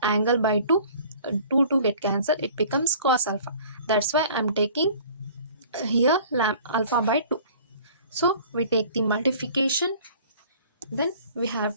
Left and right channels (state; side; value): inverted; both; correlation -0.49